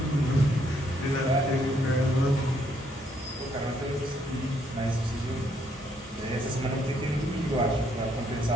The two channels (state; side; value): normal; both; correlation 0.71